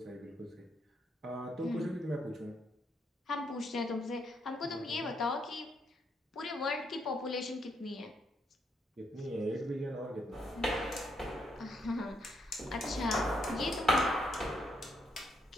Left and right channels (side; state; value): both; normal; correlation 0.76